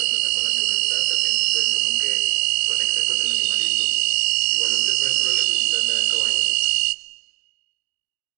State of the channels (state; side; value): quieter; left; 24.8 dB